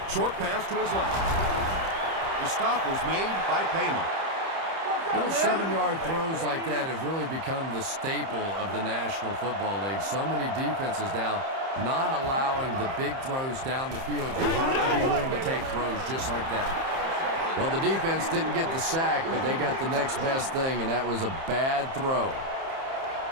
Short pass to his left. The stop was made by Polamalu. Little 7-yard throws like that have really become the staple of the National Football League. So many defenses now not allowing the big throws down the field. You have to be willing to take throws just like that. Well, the defense didn't get the sack, but they got the next best thing, and that was a bad throw.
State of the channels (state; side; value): late; left; 30 ms